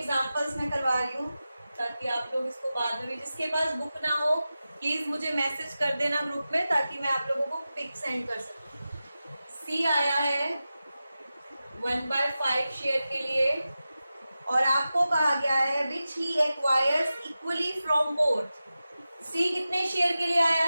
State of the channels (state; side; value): inverted; both; correlation -0.94